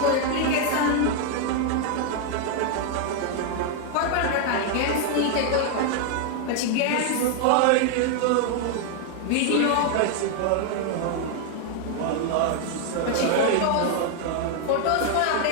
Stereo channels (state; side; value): different; both; correlation 0.00